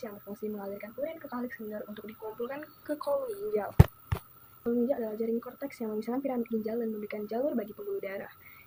berfungsi mengalirkan urin ke kalix minor untuk dikumpulkan ke kolom ginjal. Kolom ginjal adalah jaring korteks yang memisahkan piramid ginjal dan memberikan jalur bagi pembuluh darah.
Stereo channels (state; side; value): identical; both; correlation 1.00